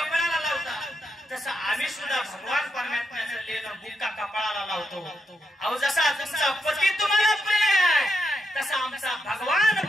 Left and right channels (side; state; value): both; normal; correlation 0.83